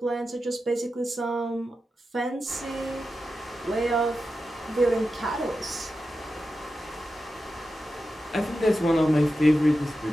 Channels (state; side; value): normal; both; correlation 0.91